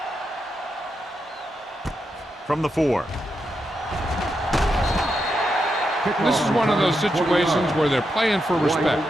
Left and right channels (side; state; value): both; normal; correlation 0.84